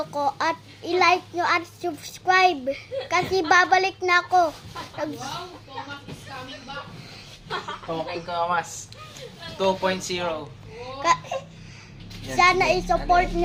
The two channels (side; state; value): both; identical; correlation 1.00